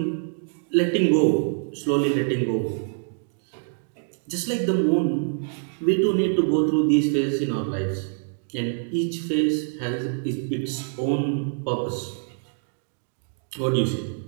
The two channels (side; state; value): left; silent; digital silence